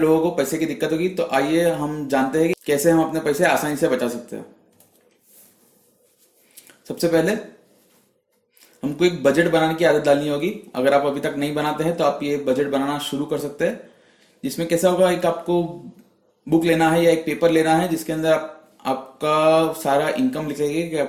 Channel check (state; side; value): identical; both; correlation 1.00